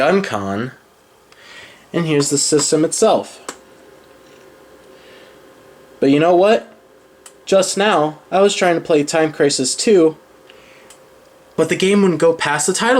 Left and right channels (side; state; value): both; identical; correlation 1.00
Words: con, and here's the system itself. But you know what? Just now, I was trying to play Time Crisis 2, but the game wouldn't go past the